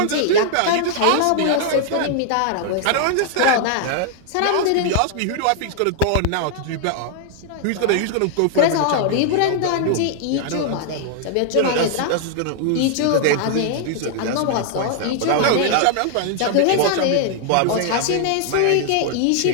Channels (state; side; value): different; both; correlation 0.00